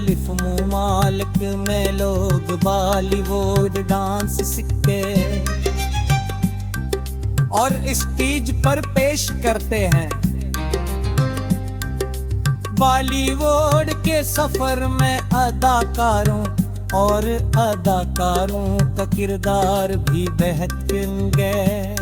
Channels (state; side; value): identical; both; correlation 1.00